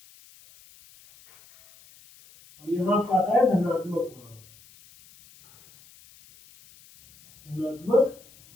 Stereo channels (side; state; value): left; noise; hiss, 26 dB below the sound